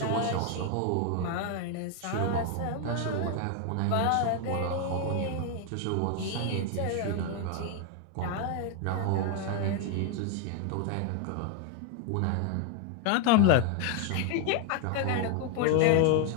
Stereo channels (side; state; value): both; different; correlation 0.01